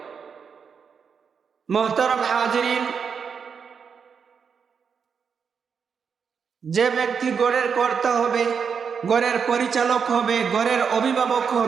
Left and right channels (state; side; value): quieter; left; 6.4 dB